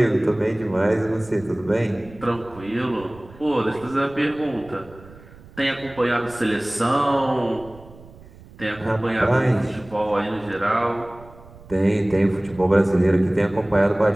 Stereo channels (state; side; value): noise; right; rumble, 21 dB below the sound